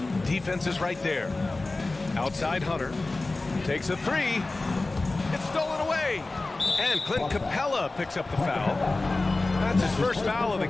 Defense is right there. Outside Hunter. Takes a three. It's stolen away. And Clint Capella picks up the foul. That's his first foul of the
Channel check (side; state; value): right; quieter; 3.2 dB